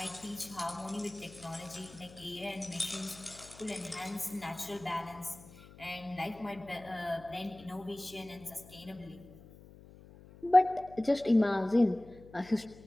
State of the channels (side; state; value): left; noise; hum, 20 dB below the sound